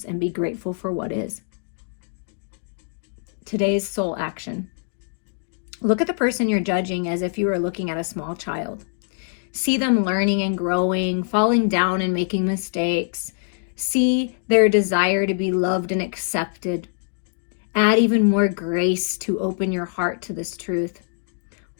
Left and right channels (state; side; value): silent; right; digital silence